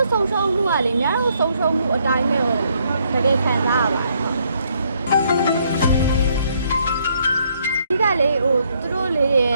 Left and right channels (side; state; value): both; inverted; correlation -0.70